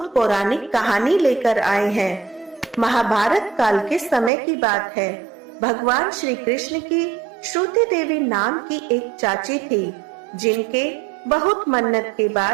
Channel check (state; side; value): drops out; left; at 4.3 s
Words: पौराणिक कहानी लेकर आए हैं। महाभारत काल के समय की बात है। भगवान श्री कृष्ण की श्रुति देवी नाम की एक चाची थी, जिनके बहुत मन्नत के